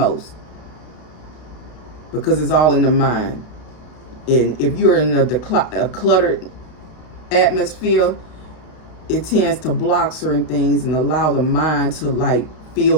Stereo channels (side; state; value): right; late; 32 ms